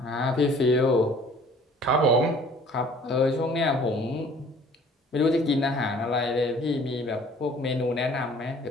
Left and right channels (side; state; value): both; normal; correlation 0.53